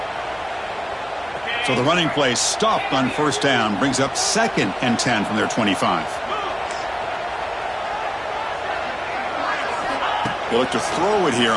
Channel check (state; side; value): identical; both; correlation 1.00